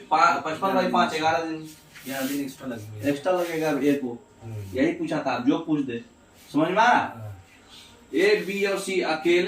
55 बाई 5 11 दिन एक्स्ट्रा लगेगा ए को। यही पूछा था, जो पूछ दे, समझ में आ रहा। ए बी और सी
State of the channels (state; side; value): identical; both; correlation 1.00